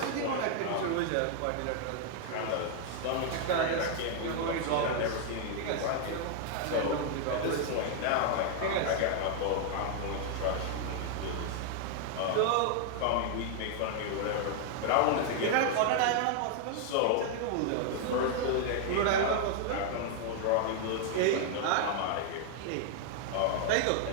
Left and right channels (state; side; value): different; both; correlation 0.00